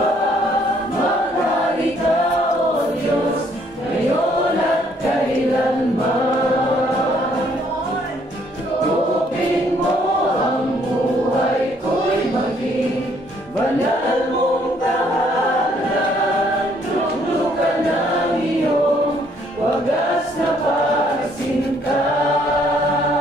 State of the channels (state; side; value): normal; both; correlation 0.65